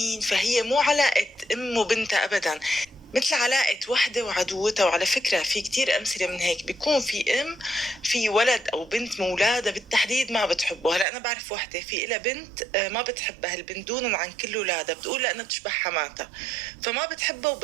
فهي مو علاقة أم وبنتها أبدا، مثل علاقة وحدة وعدوتها. وعلى فكرة في كتير أمثلة من هيك، بيكون في أم في ولد أو بنت مولادة بالتحديد ما بتحبه. هلا أنا بعرف وحدة في إلها بنت ما بتحبها البنت دونا عن كل أولادها، بتقول لأنها بتشبه حماتها فما بتحبها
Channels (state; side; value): drops out; left; at 11.1 s